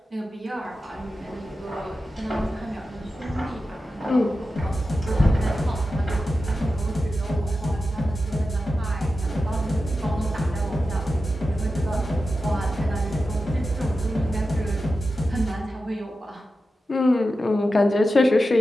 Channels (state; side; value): normal; both; correlation 0.92